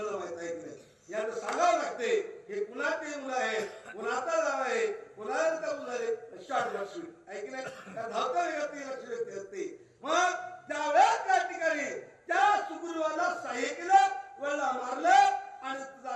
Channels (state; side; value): identical; both; correlation 1.00